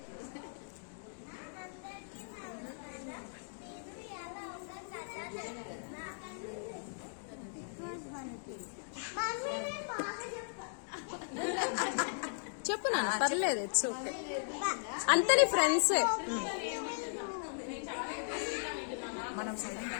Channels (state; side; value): silent; right; digital silence